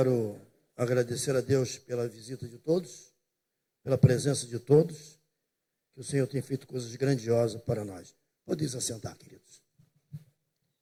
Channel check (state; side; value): identical; both; correlation 1.00